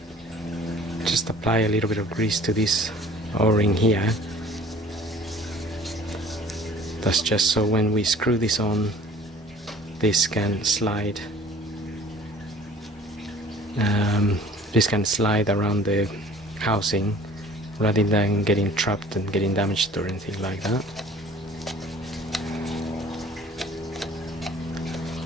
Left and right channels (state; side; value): normal; both; correlation 0.49